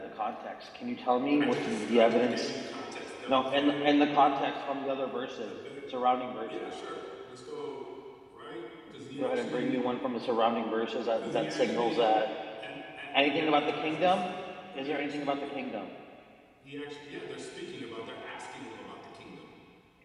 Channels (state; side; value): identical; both; correlation 1.00